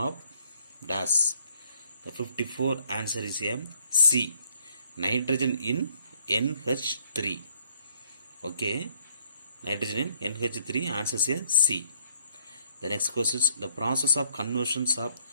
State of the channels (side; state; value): both; inverted; correlation -0.65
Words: of dash. The 54 answer is here C, nitrogen in NH3. Okay, nitrogen in NH3 answers here C. The next question is the process of conversions of